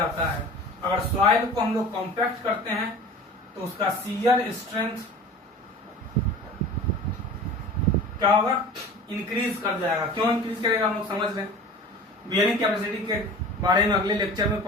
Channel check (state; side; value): normal; both; correlation 0.39